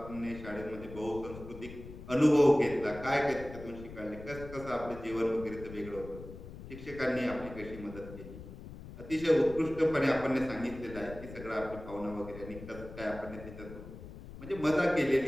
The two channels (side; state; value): left; noise; rumble, 13 dB below the sound